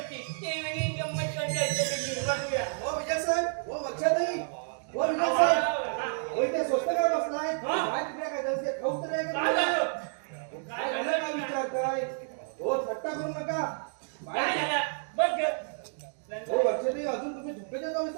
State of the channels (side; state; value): left; silent; digital silence